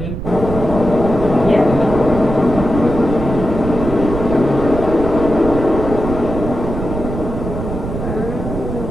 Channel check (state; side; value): noise; right; rumble, 6 dB below the sound